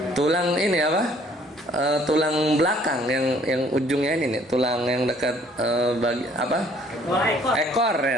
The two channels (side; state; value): both; normal; correlation 0.60